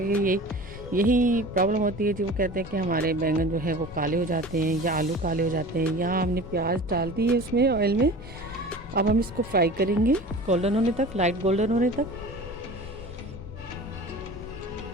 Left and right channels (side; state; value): both; normal; correlation 0.39